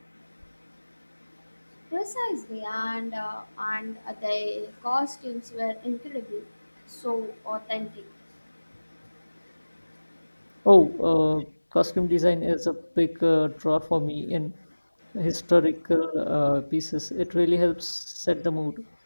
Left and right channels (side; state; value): both; inverted; correlation -1.00